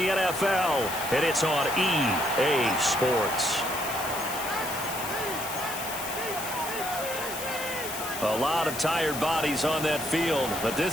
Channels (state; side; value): noise; left; hiss, 8 dB below the sound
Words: and it's on EA Sports. A lot of tired bodies on that field, but